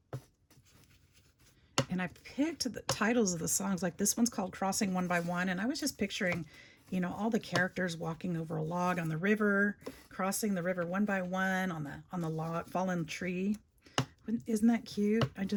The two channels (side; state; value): both; identical; correlation 1.00